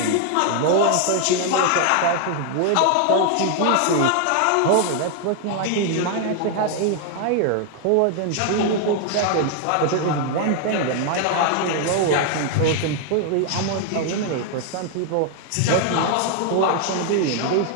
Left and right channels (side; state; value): both; different; correlation 0.00